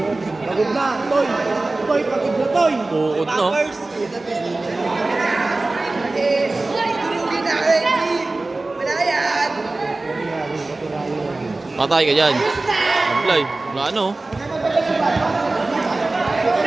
Pagod na, Toy. Toy, pagod na, Toy. Bukod no. Patay ka dyan. Apply. Wala ano.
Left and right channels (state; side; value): quieter; left; 3.1 dB